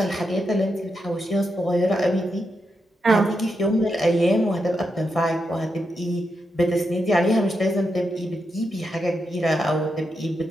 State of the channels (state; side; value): normal; both; correlation 0.84